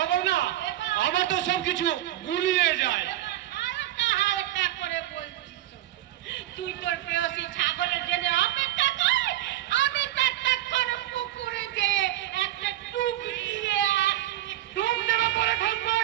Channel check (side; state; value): left; quieter; 14.5 dB